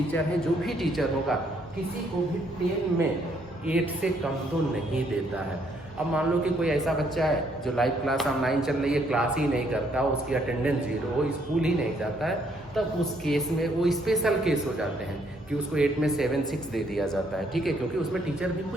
हैं, जो भी टीचर होगा किसी को भी 10 में 8 से कम तो नहीं देता है। अब मान लो कि कोई ऐसा बच्चा है जो लाइव क्लास ऑनलाइन चल रही है, क्लास ही नहीं करता, उसकी अटेंडेंस 0 हो, स्कूल ही नहीं जाता है, तब उस केस में वो स्पेशल केस हो जाते हैं कि उसको 8 में 7, 6 दे दिया जाता है, ठीक है। क्योंकि उसमें टीचर भी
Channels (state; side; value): normal; both; correlation 0.69